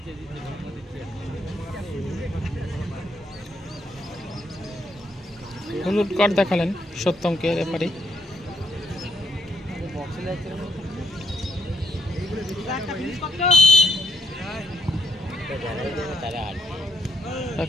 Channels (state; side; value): normal; both; correlation 0.72